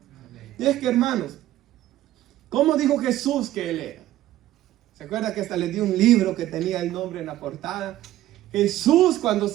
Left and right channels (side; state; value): left; quieter; 14.2 dB